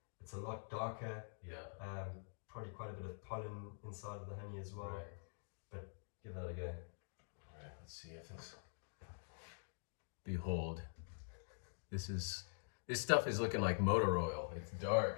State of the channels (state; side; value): silent; right; digital silence